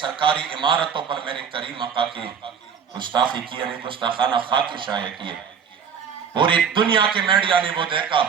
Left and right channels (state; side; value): quieter; left; 7.0 dB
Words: عمارتوں پر میرے کریم آقا کی گستاخی کی، یعنی گستاخانہ خاک شائع کیے. پوری دنیا کے میڈیا نے وہ دیکھا.